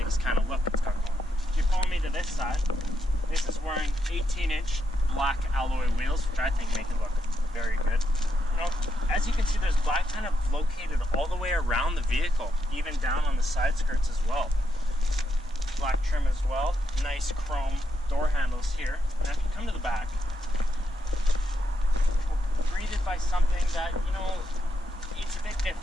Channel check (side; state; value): both; normal; correlation 0.81